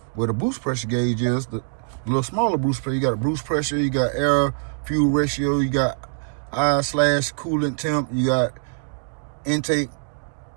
where the boost pressure gauge is, the little smaller boost pressure, you got a boost pressure, you got air fuel ratio, you got I/coolant temp, you got intake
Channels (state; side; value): silent; left; digital silence